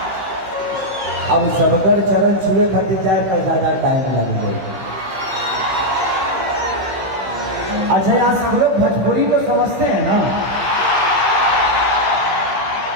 अब सबकर चरण छुए खातिर जाए तो ज्यादा टाइम लगेगा। अच्छा, यहाँ सब लोग भोजपुरी तो समझते हैं ना?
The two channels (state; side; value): late; left; 15 ms